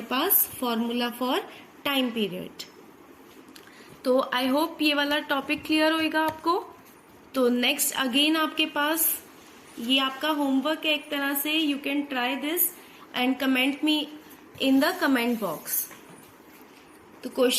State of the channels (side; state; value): both; identical; correlation 1.00